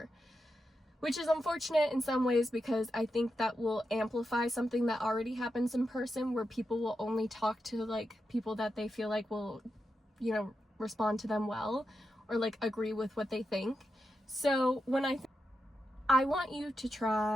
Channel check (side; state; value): both; normal; correlation 0.87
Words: which is unfortunate in some ways because I think that will amplify something that already happens in person, where people will only talk to like people that they feel like will, respond to them well or like agree with what they think. So when I want you to